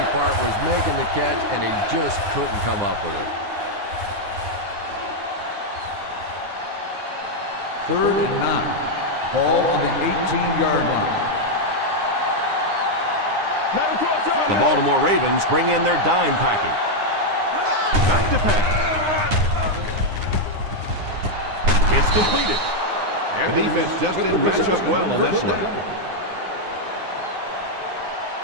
part was making the catch, and he just couldn't come up with it. Third and 9. Ball on the 18-yard line. The Baltimore Ravens bring in their dime package. Back to pass. It's completed. The defense just didn't match up well on that play.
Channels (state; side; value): late; left; 9.7 ms